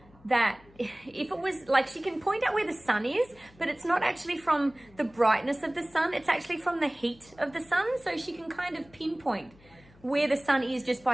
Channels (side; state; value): left; noise; hum, 26 dB below the sound